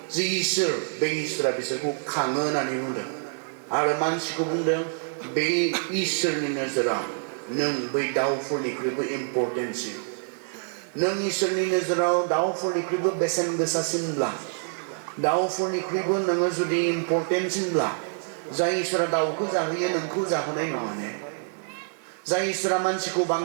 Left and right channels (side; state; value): left; silent; digital silence